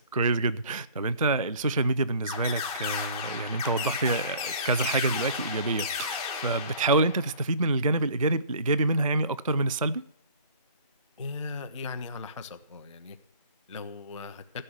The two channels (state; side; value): inverted; both; correlation -0.49